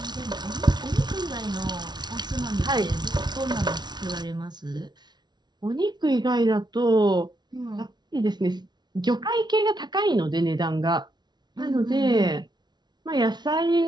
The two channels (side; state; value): left; late; 0.20 ms